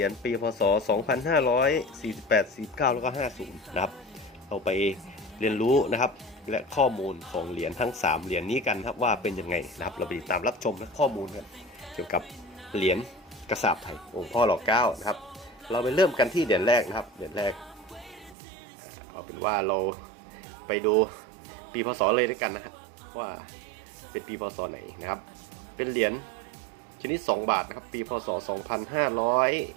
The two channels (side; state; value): left; drops out; at 18.4 s